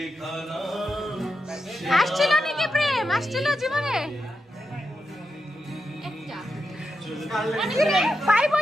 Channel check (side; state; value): both; normal; correlation 0.87